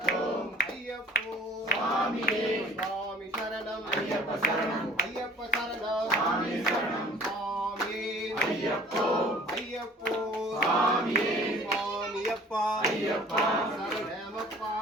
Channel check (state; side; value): normal; both; correlation 0.49